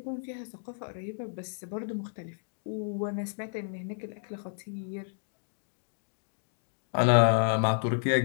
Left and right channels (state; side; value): silent; right; digital silence